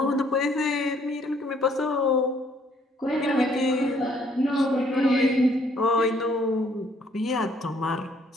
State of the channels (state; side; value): normal; both; correlation 0.65